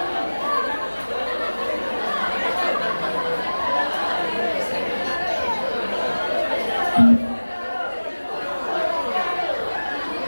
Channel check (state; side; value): inverted; both; correlation -1.00